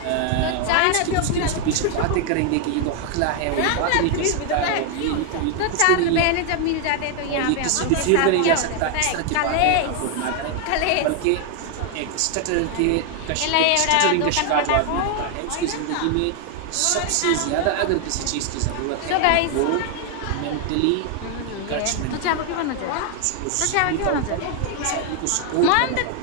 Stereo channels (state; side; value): different; both; correlation 0.00